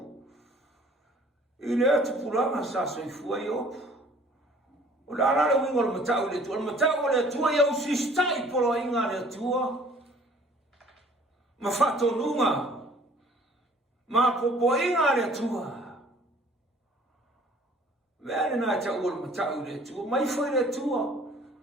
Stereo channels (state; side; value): normal; both; correlation 0.54